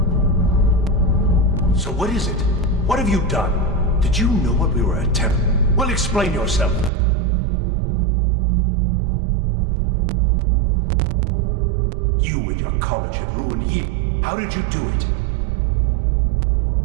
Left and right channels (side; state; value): left; drops out; at 6.9 s